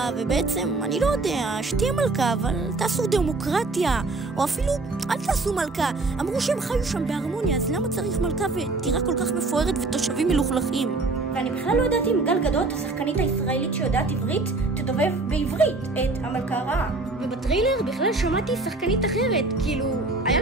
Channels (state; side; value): quieter; left; 3.4 dB